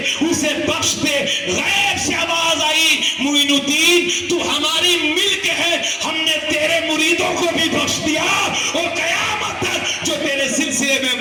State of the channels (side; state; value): both; identical; correlation 1.00